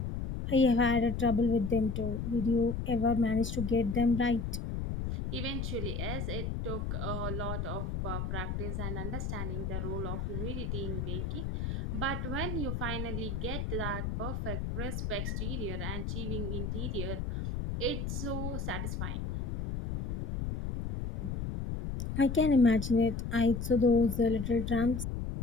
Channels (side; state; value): left; noise; rumble, 3 dB below the sound